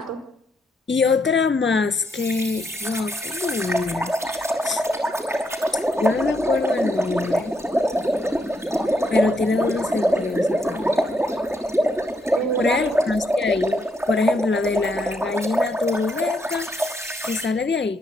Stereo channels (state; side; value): normal; both; correlation 0.76